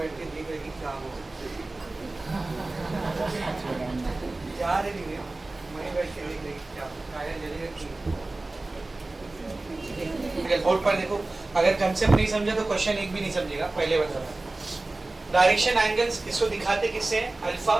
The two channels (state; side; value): quieter; left; 3.0 dB